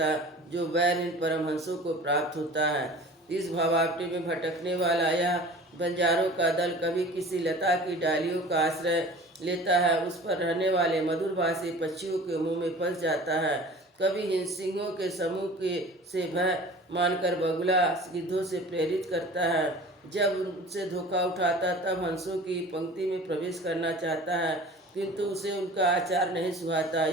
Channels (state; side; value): normal; both; correlation 0.42